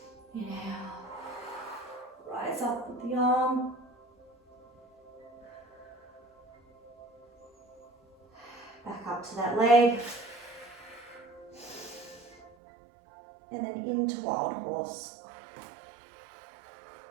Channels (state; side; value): drops out; left; at 12.5 s